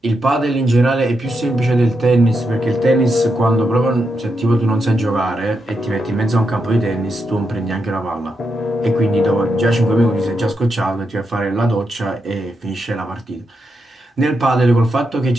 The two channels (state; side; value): normal; both; correlation 0.84